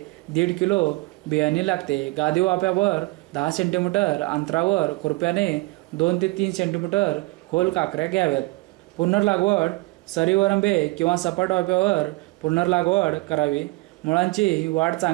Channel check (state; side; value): quieter; left; 23.3 dB